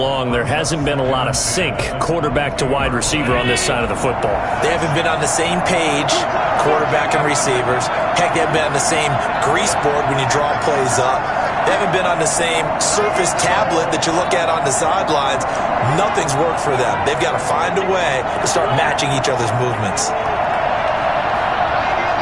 there hasn't been a lot of sync quarterback to wide receiver on this side of the football. They haven't been on the same page, quarterback and receivers. Heck, they haven't been on the same grease board when you draw plays up. They haven't been on the same surface tablet that you look at on the sidelines. Nothing's worked for them. They've got to find a way to start matching each other's movements.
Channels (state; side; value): identical; both; correlation 1.00